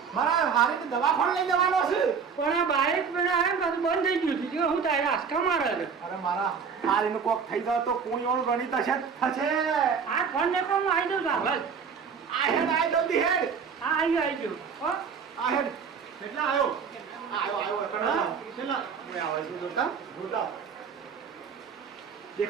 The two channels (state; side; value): quieter; left; 6.2 dB